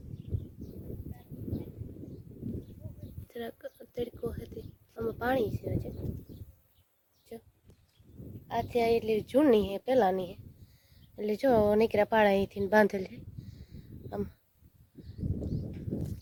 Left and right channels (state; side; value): identical; both; correlation 1.00